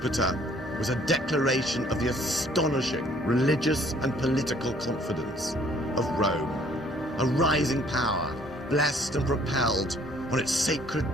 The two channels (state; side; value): normal; both; correlation 0.59